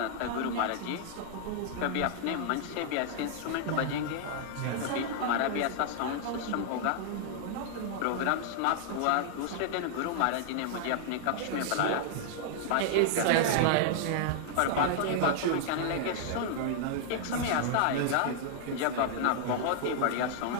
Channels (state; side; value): different; both; correlation -0.01